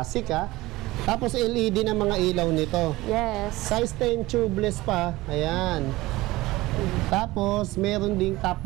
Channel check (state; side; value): quieter; left; 19.1 dB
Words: ha? Tapos LED na mga ilaw nito. Yes. Size 10 tubeless pa. Ayan. Tapos, meron ding top